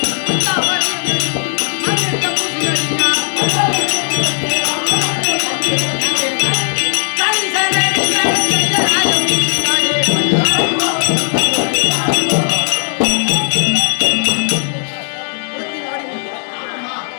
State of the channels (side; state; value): right; silent; digital silence